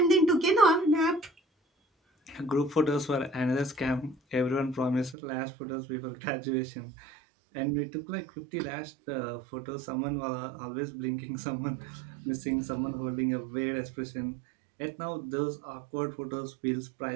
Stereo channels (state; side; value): drops out; left; at 5.2 s